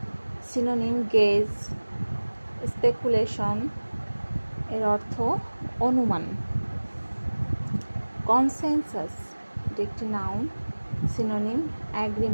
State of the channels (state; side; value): inverted; both; correlation -1.00